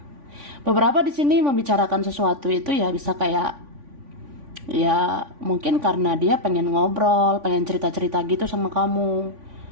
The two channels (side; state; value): left; late; 3.5 ms